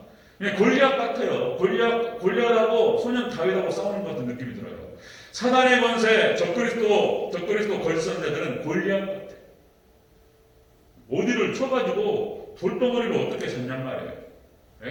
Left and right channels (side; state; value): both; identical; correlation 1.00